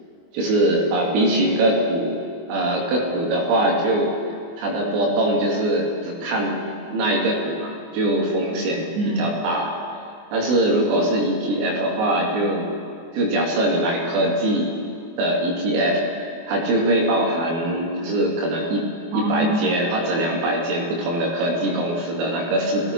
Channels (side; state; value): left; late; 24 ms